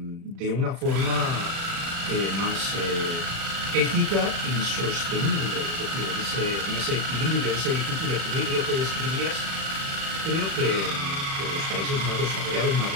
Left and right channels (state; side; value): late; left; 35 ms